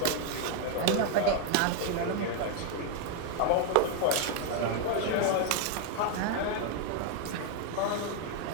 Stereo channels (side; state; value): both; different; correlation 0.01